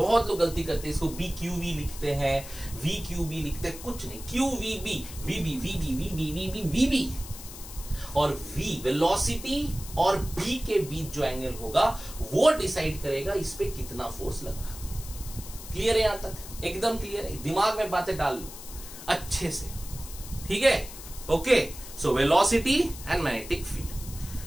लोग गलती करते हैं, इसको BQV लिखते हैं, VQB लिखते हैं, कुछ नहीं, QVB, VB, VB, VB, VB, VB। और V वेलोसिटी और B के बीच जो एंगल होगा वो डिसाइड करेगा इस पे कितना फोर्स लग रहा। क्लियर है? यहां तक एकदम क्लियर है? दिमाग में बातें डाल लो अच्छे से, ठीक है। Okay, so velocity and magnetic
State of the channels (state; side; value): noise; left; hiss, 13 dB below the sound